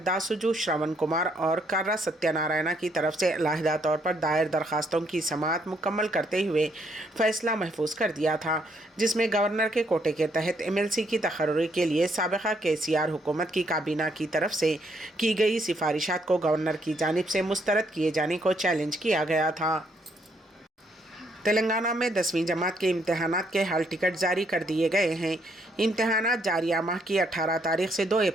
दासुजू श्रवण कुमार और कर्रा सत्यनारायणा की तरफ से अलहदा तौर पर दायर दरखास्तों की समाअत मुकम्मल करते हुए फैसला महफूज कर दिया था, जिसमें गवर्नर के कोटे के तहत MLC की तकर्री के लिए साबिक़ा KCR हुकूमत की काबीना की तरफ से की गई सिफारिशात को गवर्नर की जानिब से मुस्तरद किए जाने को चैलेंज किया गया था। तेलंगाना में 10वीं जमात के इम्तहानात के हाल टिकट जारी कर दिए गए हैं। इम्तहानात जारिया माह की 18 तारीख से 2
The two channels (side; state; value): both; normal; correlation 0.72